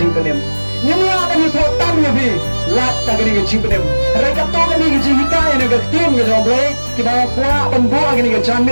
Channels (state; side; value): inverted; both; correlation -1.00